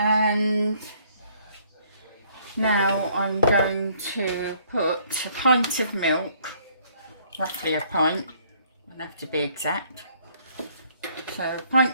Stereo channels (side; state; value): both; inverted; correlation -0.63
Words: now I'm going to put a pint of milk, roughly a pint, I don't have to be exact, so a